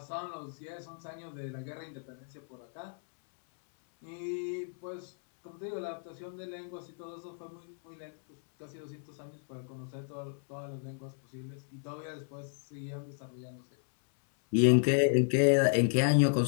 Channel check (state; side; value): silent; right; 56 dB below the other